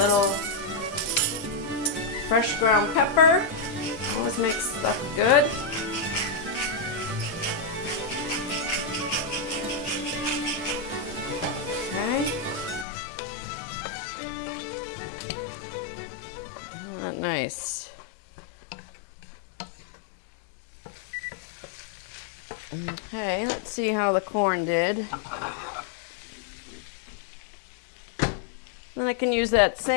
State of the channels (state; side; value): drops out; right; at 12.9 s